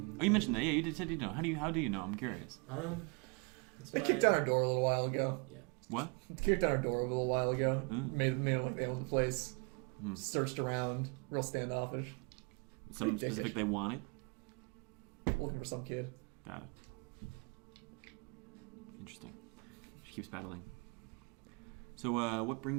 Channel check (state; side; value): quieter; left; 32.9 dB